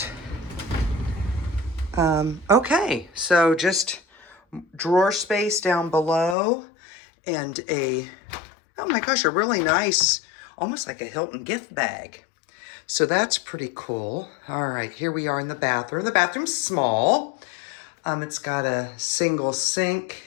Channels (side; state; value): right; drops out; at 6.4 s